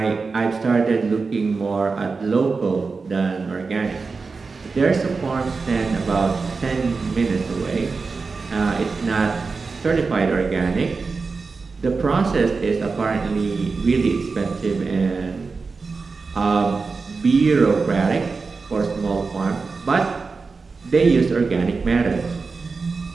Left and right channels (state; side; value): quieter; left; 4.4 dB